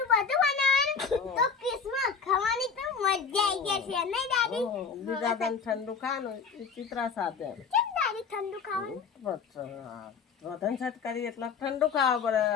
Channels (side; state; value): right; quieter; 5.8 dB